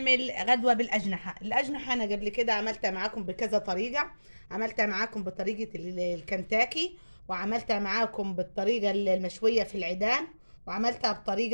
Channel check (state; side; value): inverted; both; correlation -1.00